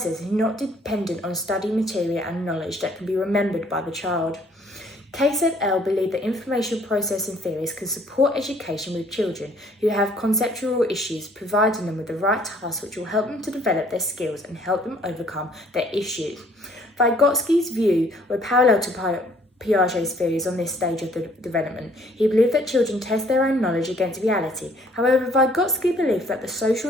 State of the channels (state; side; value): normal; both; correlation 0.60